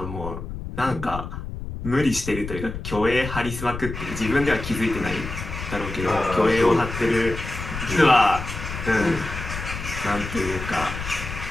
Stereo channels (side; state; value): left; noise; rumble, 8 dB below the sound